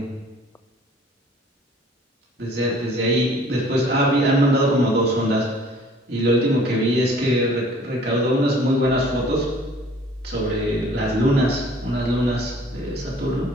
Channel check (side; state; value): both; normal; correlation 0.53